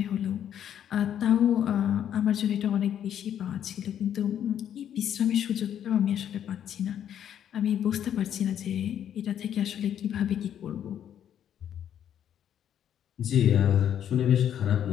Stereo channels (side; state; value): right; quieter; 9.8 dB